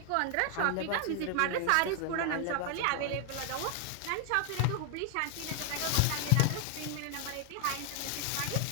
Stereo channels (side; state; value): both; different; correlation 0.00